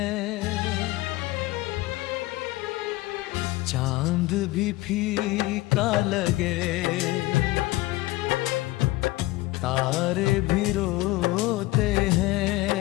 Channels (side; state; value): right; quieter; 19.2 dB